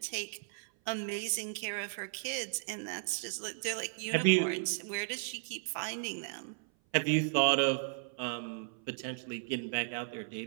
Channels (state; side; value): silent; left; 54 dB below the other